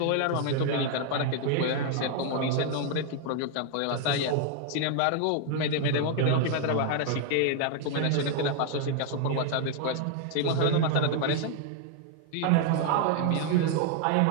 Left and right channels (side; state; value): both; different; correlation 0.00